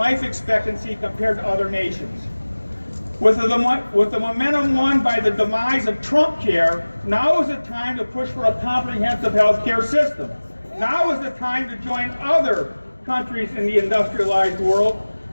expectancy compared to other nations. With the momentum won by the demise of Trump care, now is the time to push for a comprehensive health care system. Now is the time to join other countries in the industrialized world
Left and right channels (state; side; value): inverted; both; correlation -1.00